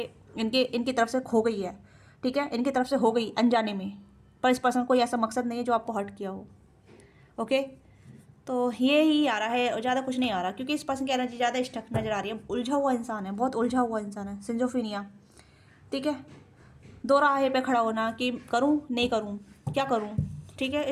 इनकी तरफ से खो गई है, ठीक है, इनकी तरफ से हो गई अनजाने में। पर इस पर्सन को ऐसा मकसद नहीं है जो आपको हर्ट किया हो। ओके, तो ये ही आ रहा है और ज़्यादा कुछ नहीं आ रहा, क्योंकि इस पर्सन की एनर्जी ज़्यादा स्टक नज़र आ रही है। उलझा हुआ इंसान है, बहुत उलझा हुआ इंसान है, सिंजोफीनिया, ठीक है। दो राहे पे खड़ा होना कि करूं नहीं करूं, क्या करूं, ठीक है,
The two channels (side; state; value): both; identical; correlation 1.00